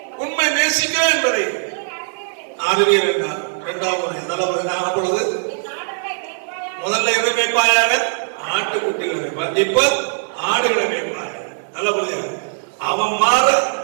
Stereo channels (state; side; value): silent; left; digital silence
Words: உண்மை நேசிக்கிறேன் என்பதை அறிவீர் என்றார். இரண்டாவது நல்லவர் அப்பொழுது முதல்ல எதை மேய்ப்பாயாக? ஆட்டுக்குட்டிகளை. இப்ப ஆடுகளை மேய்ப்பாய். அவன் மாற